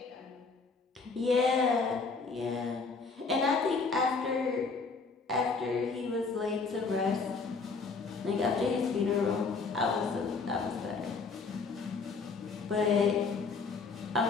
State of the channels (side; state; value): right; quieter; 4.5 dB